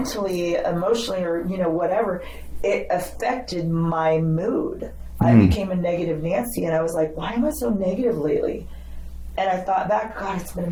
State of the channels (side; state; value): both; identical; correlation 1.00